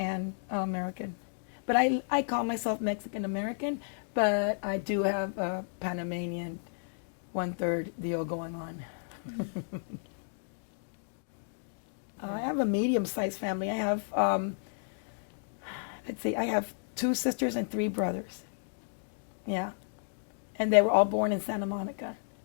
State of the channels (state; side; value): silent; right; digital silence